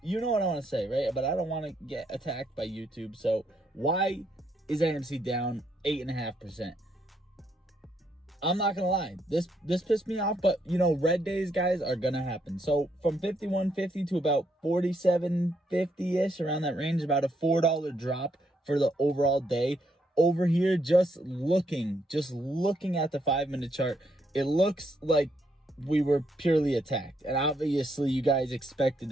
You know what I want to say, right? But I don't want to get attacked by YouTube. So why is AMC down 8.5%? I'm not gonna lie, this pissed me off, but you know, red days, guys, are gonna happen. So from 51.50 to about 47.50ish, around that range, about a $4 drop for the overall day. Over here, just looking at the 5-minute chart, it looks like we were purely attacked, and obviously you guys expected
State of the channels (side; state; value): both; normal; correlation 0.75